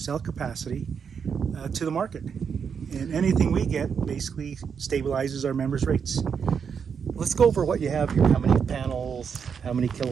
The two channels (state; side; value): quieter; left; 6.7 dB